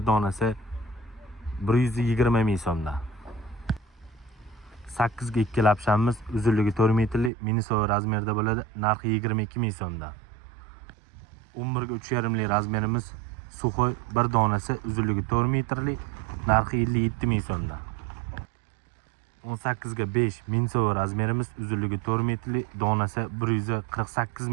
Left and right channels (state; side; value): drops out; left; at 7.3 s